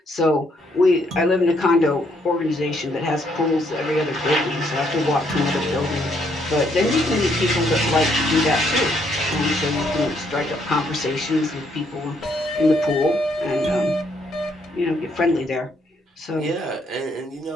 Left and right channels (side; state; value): both; normal; correlation 0.71